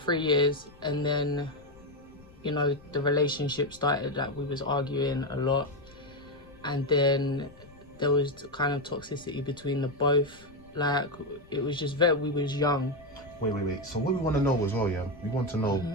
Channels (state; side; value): noise; left; rumble, 24 dB below the sound